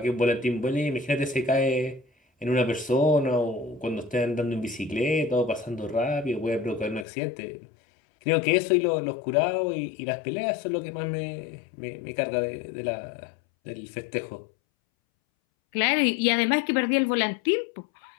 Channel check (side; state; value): right; drops out; at 7.1 s